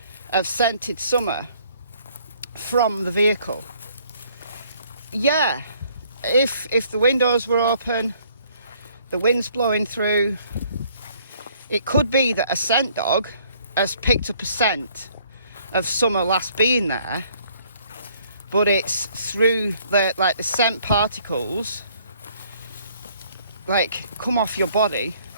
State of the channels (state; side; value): inverted; both; correlation -0.62